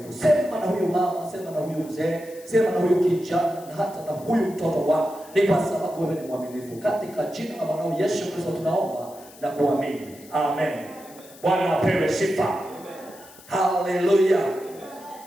Sema na huyu mama, sema na huyu mzee, sema na huyu kijana na hata na huyu mtoto. Bwana, ni kwa sababu wewe ni mwaminifu. Katika jina la mwanao Yesu Kristo tunaomba na kuamini. Amen. Bwana apewe sifa. Haleluya.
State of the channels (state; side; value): noise; left; hiss, 21 dB below the sound